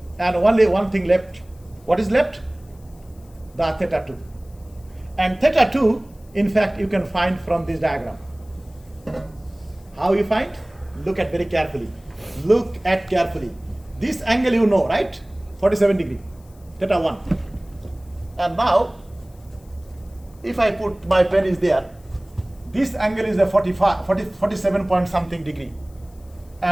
And only one thing left. What is left? The theta 2. And theta 2, in fact, you can find from this diagram. How you find? Look at very carefully. Look at carefully. This angle you know, right? 47 degree. Theta 1. And now, if I put my pen is there, this angle is a 47 point something degree.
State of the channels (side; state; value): left; noise; hiss, 30 dB below the sound